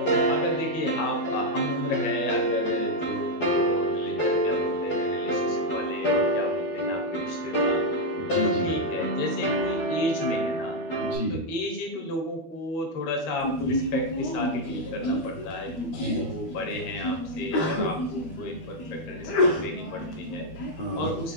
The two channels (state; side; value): late; right; 12 ms